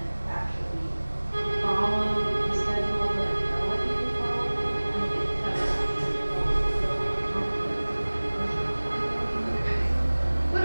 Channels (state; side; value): inverted; both; correlation -1.00